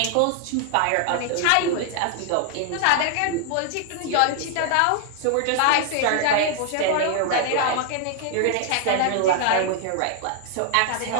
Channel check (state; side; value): different; both; correlation 0.00